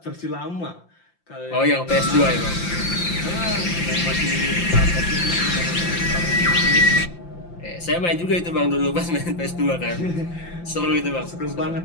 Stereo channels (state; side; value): late; right; 5.8 ms